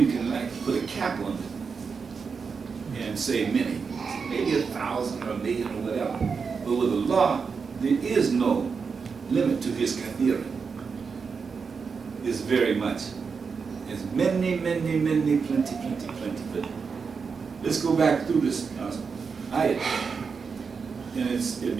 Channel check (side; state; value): left; quieter; 5.4 dB